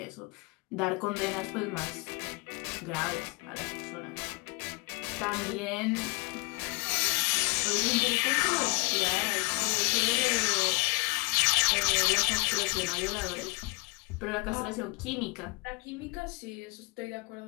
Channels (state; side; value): quieter; right; 29.0 dB